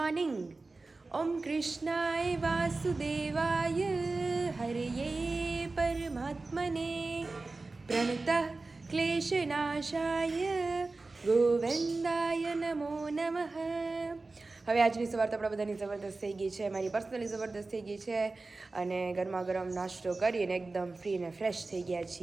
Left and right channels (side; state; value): left; quieter; 3.5 dB